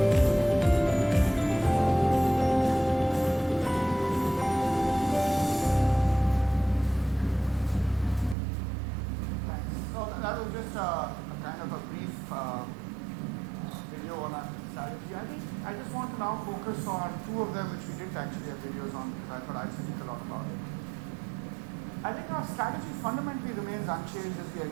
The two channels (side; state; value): left; drops out; at 8.3 s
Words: Thanks. So that was just a kind of a brief video on our strategy. I just want to now focus on 2 of them which we didn't actually have videos on because I thought I'd speak a lot about it. I think our strategy fundamentally remains unchanged as we